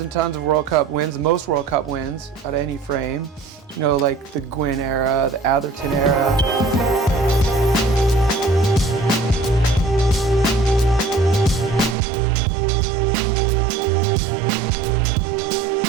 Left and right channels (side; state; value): left; drops out; at 12.0 s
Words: and tons of World Cup wins, the most World Cup wins out of any frame. You know, like the Gwin era, the Atherton era.